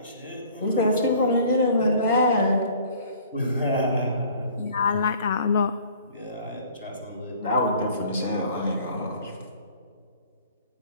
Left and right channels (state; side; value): inverted; both; correlation -0.51